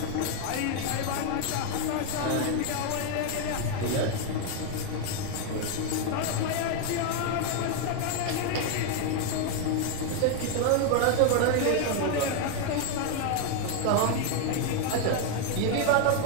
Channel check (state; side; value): different; both; correlation 0.01